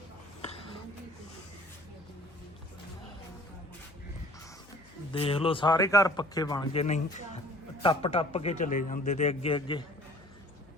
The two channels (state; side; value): noise; left; hum, 24 dB below the sound